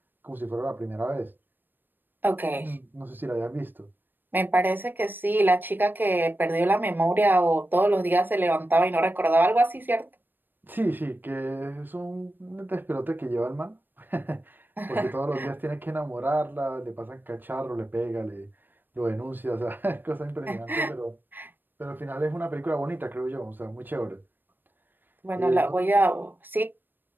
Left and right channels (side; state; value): left; late; 0.093 ms